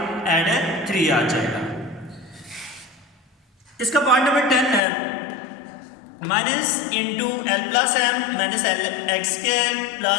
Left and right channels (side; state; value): right; drops out; at 4.8 s